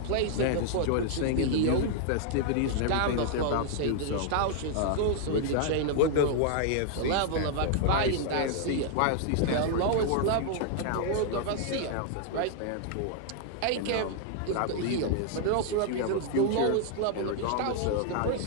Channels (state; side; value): different; both; correlation -0.01